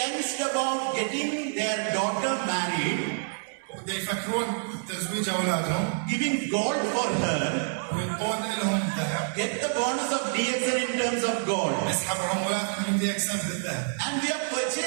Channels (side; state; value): left; silent; 60 dB below the other